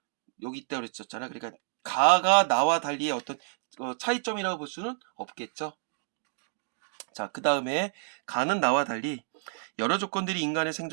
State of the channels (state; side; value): silent; left; digital silence